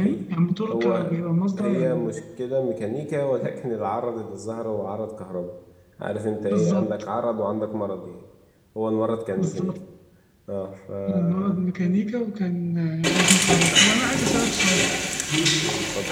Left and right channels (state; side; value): identical; both; correlation 1.00